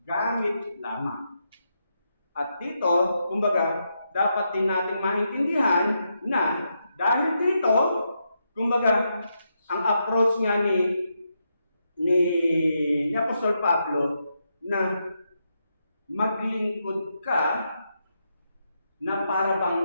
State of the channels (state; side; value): inverted; both; correlation -0.83